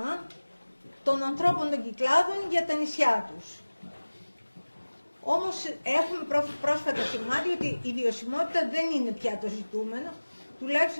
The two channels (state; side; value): inverted; both; correlation -1.00